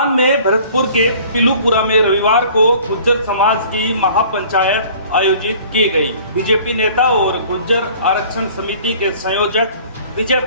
में भरतपुर के पिलूपुरा में रविवार को गुज्जर समाज की महापंचायत आयोजित की गई। बीजेपी नेता और गुज्जर आरक्षण समिति के संयोजक विजय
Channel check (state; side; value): inverted; both; correlation -0.50